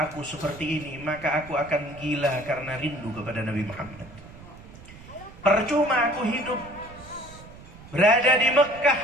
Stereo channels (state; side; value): noise; right; rumble, 18 dB below the sound